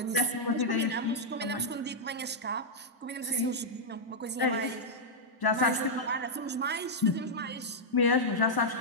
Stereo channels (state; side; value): normal; both; correlation -0.06